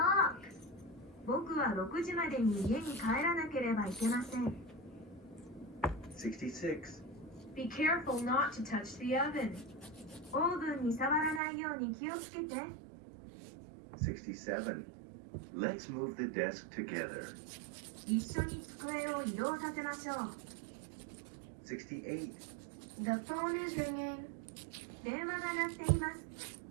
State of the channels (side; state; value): left; drops out; at 11.4 s